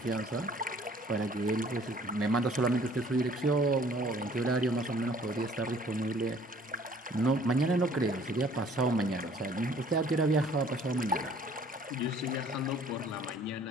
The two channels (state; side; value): normal; both; correlation 0.56